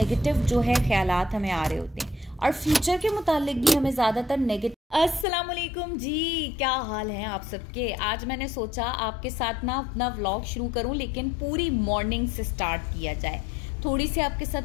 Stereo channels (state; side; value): drops out; right; at 5.2 s